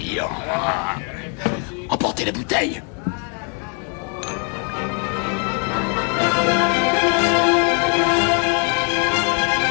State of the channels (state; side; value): quieter; right; 39.4 dB